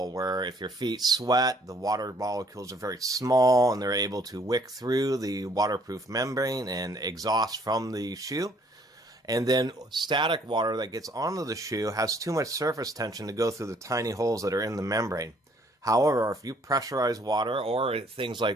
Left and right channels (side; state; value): both; normal; correlation 0.62